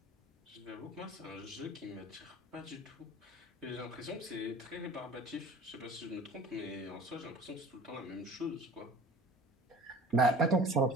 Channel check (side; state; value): both; normal; correlation 0.44